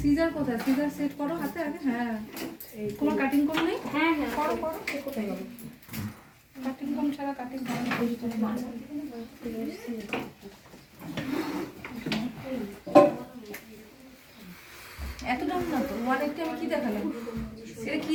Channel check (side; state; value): both; identical; correlation 1.00